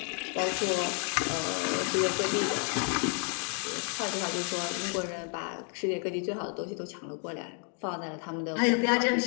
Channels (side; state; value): right; quieter; 39.9 dB